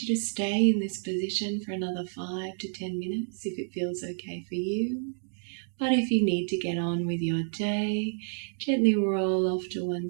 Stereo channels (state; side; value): silent; left; digital silence